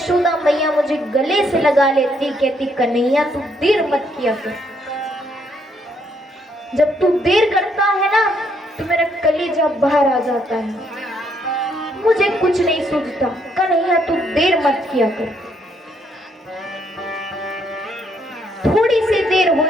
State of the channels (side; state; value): both; normal; correlation 0.71